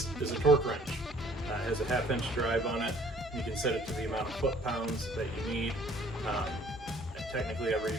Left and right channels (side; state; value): both; normal; correlation 0.57